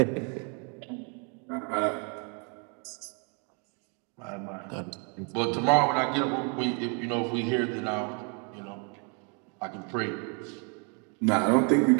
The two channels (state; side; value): quieter; left; 37.3 dB